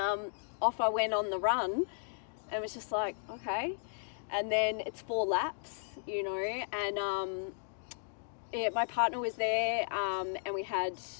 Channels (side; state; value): right; silent; digital silence